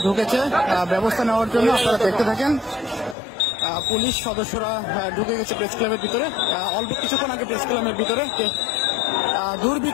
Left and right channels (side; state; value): right; drops out; at 3.2 s